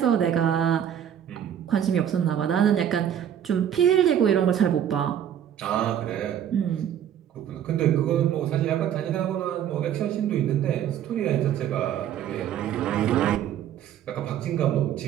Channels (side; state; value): left; quieter; 9.8 dB